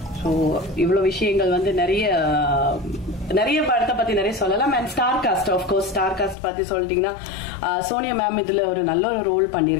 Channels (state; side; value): drops out; right; at 6.4 s